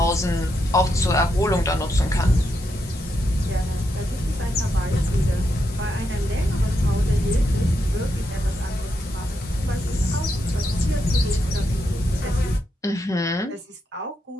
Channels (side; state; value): both; normal; correlation 0.82